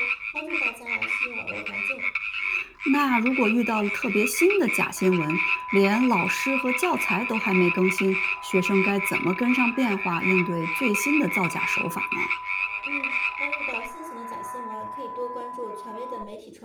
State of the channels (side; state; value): both; identical; correlation 1.00